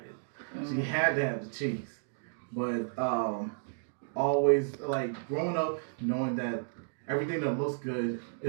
it. She had to have the cheese. But always like growing up knowing that everything that looks good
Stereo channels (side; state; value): left; silent; digital silence